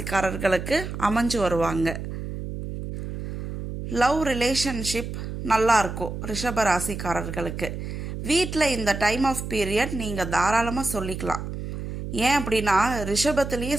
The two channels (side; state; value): right; noise; hum, 7 dB below the sound